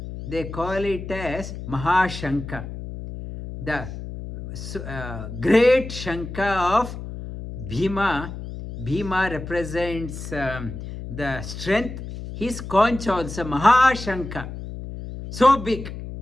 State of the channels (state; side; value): noise; left; hum, 9 dB below the sound